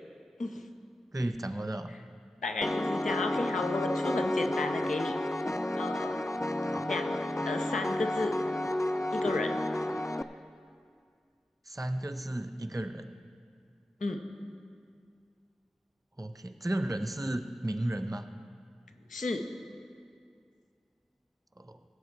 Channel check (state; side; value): normal; both; correlation 0.91